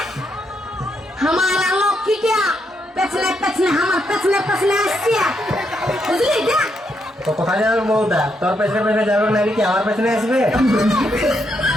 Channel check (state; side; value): normal; both; correlation 0.78